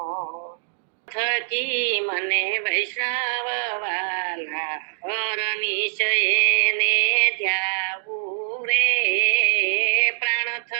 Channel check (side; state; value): left; silent; digital silence